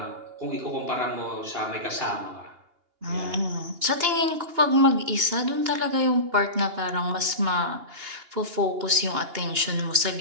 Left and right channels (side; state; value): left; late; 2.8 ms